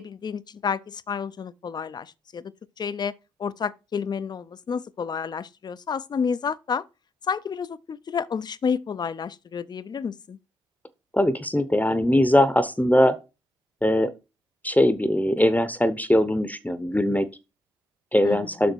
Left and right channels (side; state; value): both; normal; correlation 0.85